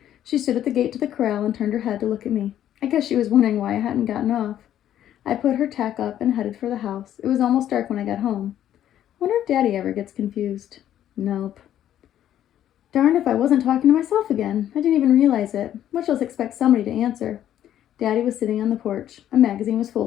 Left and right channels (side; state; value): right; quieter; 11.2 dB